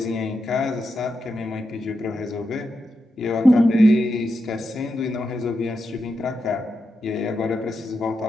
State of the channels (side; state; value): both; normal; correlation 0.87